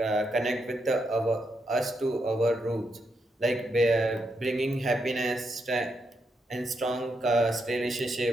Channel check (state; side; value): normal; both; correlation 0.81